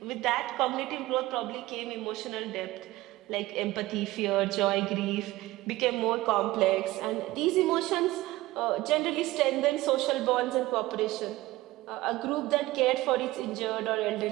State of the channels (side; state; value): left; quieter; 18.2 dB